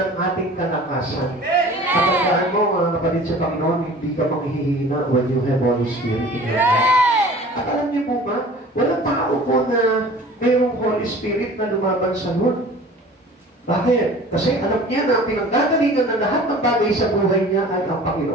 ating kalakasan. Kapag mo, mga kapatid sa Panginoon, hindi ka manghihina when you have Holy Spirit in your life. At alam niyo po ba, walang tao po na mayroong Holy Spirit na lumaban sa Lord. Bakit? Kasi alam niya na ang pinanggagalingan ng lahat ng bagay sa buhay niya ay ang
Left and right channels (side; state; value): both; normal; correlation 0.44